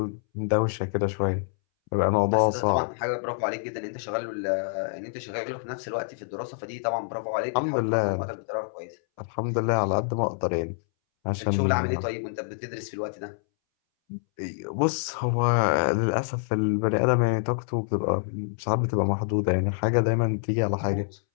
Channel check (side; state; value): right; silent; 60 dB below the other